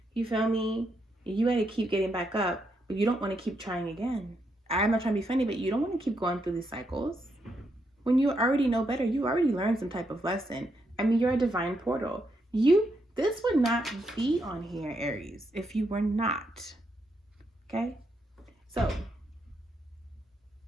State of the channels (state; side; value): normal; both; correlation 0.79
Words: You feel me? You got to keep getting back up, but you don't want to keep trying again. I'm not trying to be funny, but you don't want to keep going through these cycles. When you already know better, you already learned some type of lesson. I mean, you're a divine portal. This would not be on here, Aries, if you were not. Okay? So,